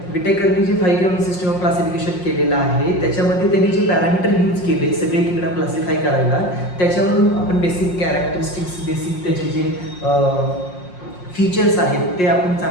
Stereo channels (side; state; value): right; late; 5.6 ms